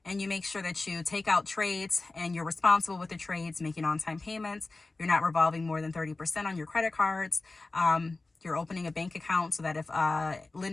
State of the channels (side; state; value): right; quieter; 3.3 dB